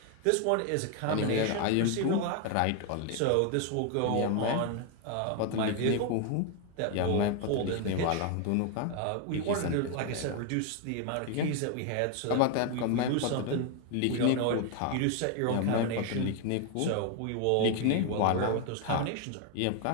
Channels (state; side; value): different; both; correlation 0.01